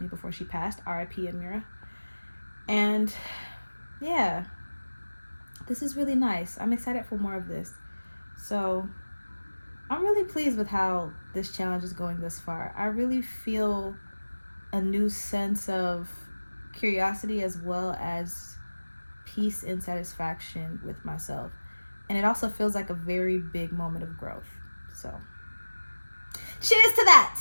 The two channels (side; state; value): both; inverted; correlation -1.00